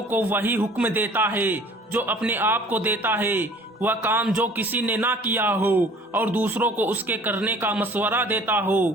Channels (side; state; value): both; normal; correlation 0.50